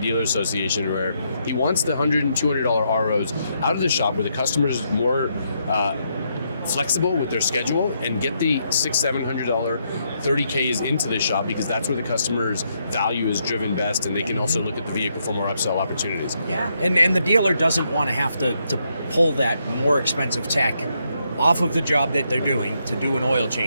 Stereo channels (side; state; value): both; inverted; correlation -0.77